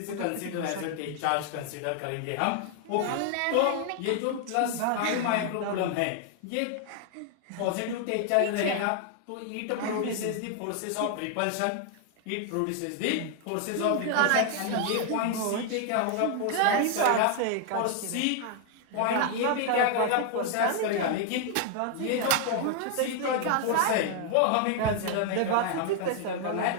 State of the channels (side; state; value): both; different; correlation 0.00